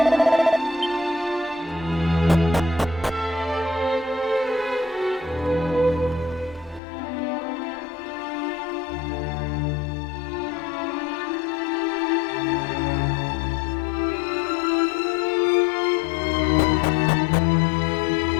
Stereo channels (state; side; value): drops out; right; at 6.8 s